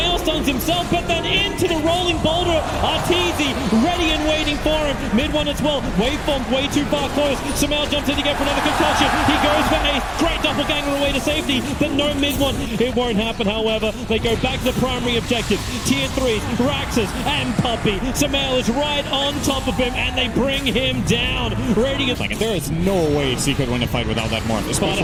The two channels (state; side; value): identical; both; correlation 1.00